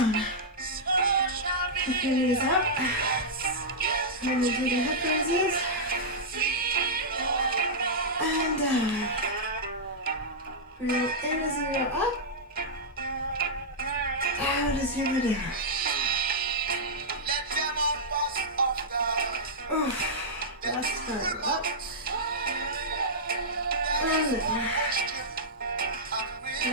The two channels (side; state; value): both; normal; correlation -0.10